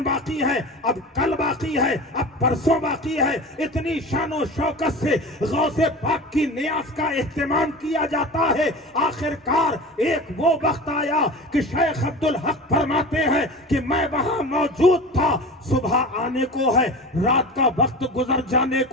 बाकी है, अब कल बाकी है, अब परसों बाकी है। इतनी शानो शौकत से गौसे पाक की नियाज का एहतमाम किया जाता है। आखिरकार एक वो वक्त आया कि शेख अब्दुल हक फरमाते हैं कि मैं वहां मौजूद था, सुबह आने को है, रात का वक्त गुजर जाने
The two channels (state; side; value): normal; both; correlation 0.33